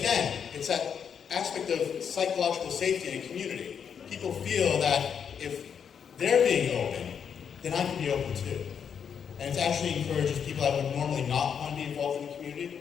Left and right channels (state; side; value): quieter; right; 7.4 dB